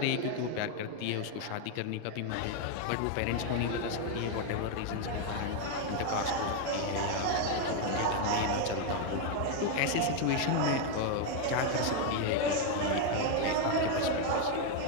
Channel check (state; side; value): different; both; correlation 0.01